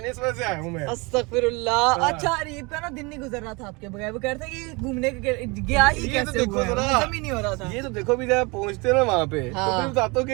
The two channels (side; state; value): left; quieter; 27.4 dB